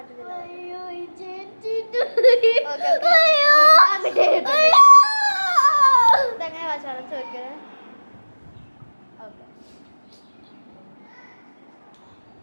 ഇതെങ്ങനെ വാശാണ് ചോദിക്കണേ. ഓക്കെ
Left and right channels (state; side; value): inverted; both; correlation -1.00